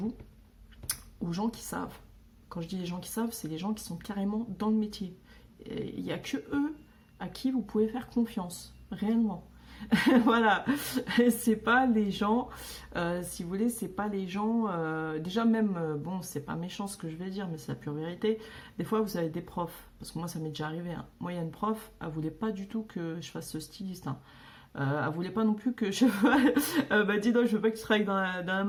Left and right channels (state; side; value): identical; both; correlation 1.00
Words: aux gens qui savent. Quand je dis les gens qui savent, c'est les gens qui sont carrément dans le métier. Il n'y a que eux à qui vous pouvez faire confiance, réellement. Voilà, c'est pas les gens, si vous voulez, c'est pas les gens, déjà même, bon, c'est pas méchant ce que je vais dire, mais c'est la pure vérité. Des fois, vous avez des profs, parce que moi, ça m'est déjà arrivé, hein. Moi, il y a une prof, elle voulait pas du tout que je fasse ce styliste, hein. Elle voulait pas non plus que je... bah dis donc, je veux pas que tu travailles dans la